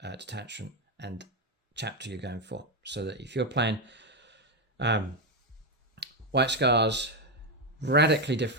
detachment and chapter you're going for. So that if you're playing White Scars, radically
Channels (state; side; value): normal; both; correlation 0.07